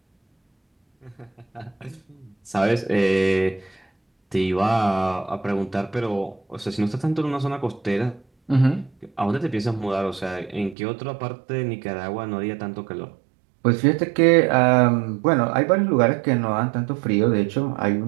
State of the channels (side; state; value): left; drops out; at 10.8 s